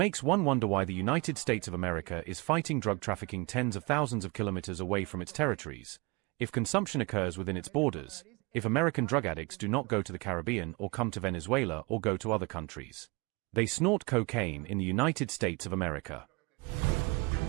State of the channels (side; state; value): left; quieter; 27.7 dB